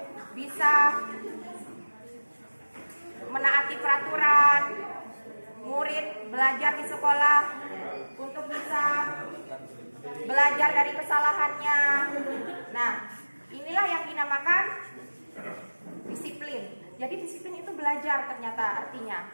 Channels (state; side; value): inverted; both; correlation -1.00